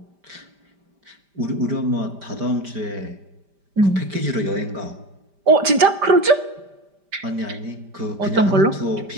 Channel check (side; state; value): left; late; 5.1 ms